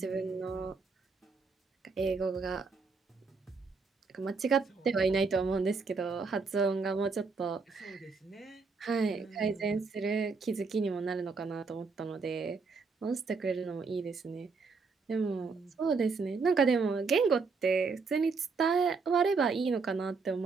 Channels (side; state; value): left; quieter; 4.6 dB